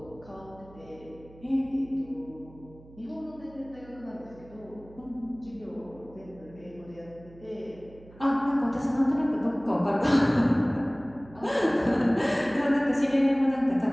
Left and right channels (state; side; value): noise; right; hum, 22 dB below the sound